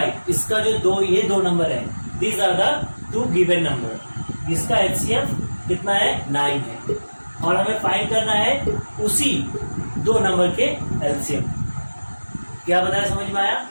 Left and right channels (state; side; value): inverted; both; correlation -1.00